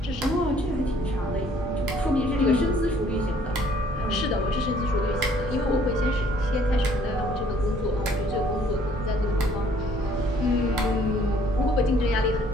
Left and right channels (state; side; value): normal; both; correlation 0.60